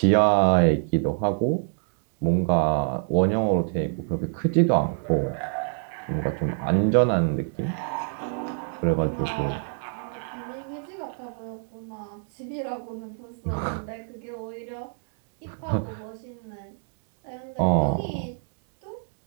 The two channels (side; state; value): left; silent; 61 dB below the other